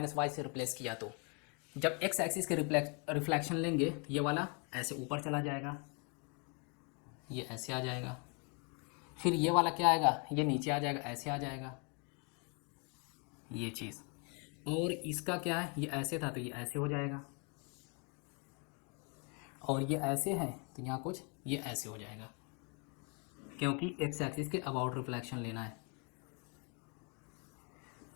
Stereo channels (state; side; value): quieter; right; 35.2 dB